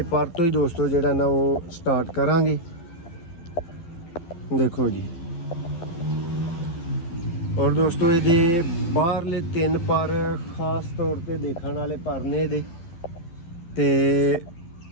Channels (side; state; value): right; late; 12 ms